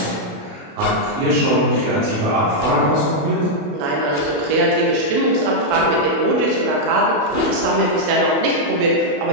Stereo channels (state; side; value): late; left; 28 ms